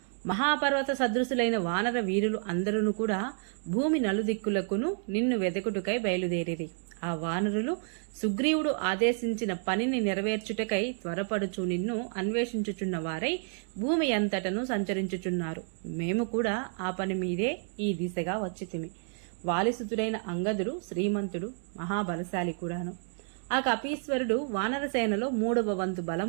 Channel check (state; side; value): silent; left; 58 dB below the other